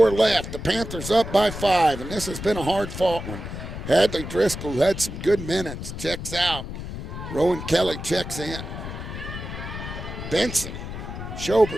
left. The Panthers up by 5, and this has been a hard-fought one. Hadley Driscoll had some good minutes. Checks out. Rowan Kelly checks in. Benson,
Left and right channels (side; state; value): left; noise; rumble, 8 dB below the sound